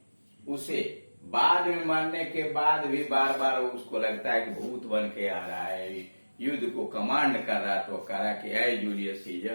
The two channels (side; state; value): both; inverted; correlation -1.00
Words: उसे बाद में मरने के बाद भी बार बार उसको लगता है कि भूत बन के आ रहा है, युद्ध को कमांड कर रहा, तो कह रहा कि ऐ जूलियस सीजर,